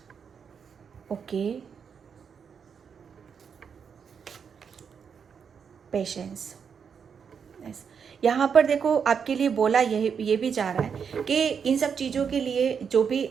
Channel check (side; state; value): left; quieter; 6.7 dB